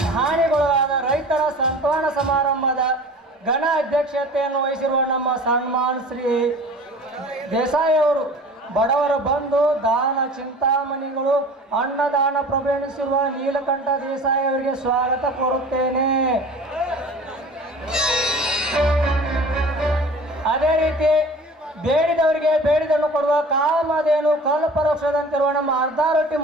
ಹಾನಿಗೊಳಗಾದ ರೈತರ ಸಂತಾನ ಸಮಾರಂಭದ ಘನ ಅಧ್ಯಕ್ಷತೆಯನ್ನು ವಹಿಸಿರುವ ನಮ್ಮ ಸನ್ಮಾನ್ ಶ್ರೀ ದೇಸಾಯಿ ಅವರು ಬಡವರ ಬಂಧು ದಾನ ಚಿಂತಾಮಣಿಗಳು ಅನ್ನದಾನ ಪ್ರಭೆಣಿಸಿರುವ ನೀಲಕಂಠ ದೇಸಾಯಿ ಅವರಿಗೆ ಸ್ವಾಗತ ಕೋರುತ್ತೇನೆ. ಅದೇ ರೀತಿ ಬೇಡಿದವರಿಗೆ ಬೇಡಿದನ್ನು ಕೊಡುವ ಕಾಮಧೇನು ಕಲ್ಪವೃಕ್ಷದಂತಿರುವ ನಮ್ಮ ಅರ್ಧಾರೊಟ್ಟಿ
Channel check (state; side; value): normal; both; correlation 0.42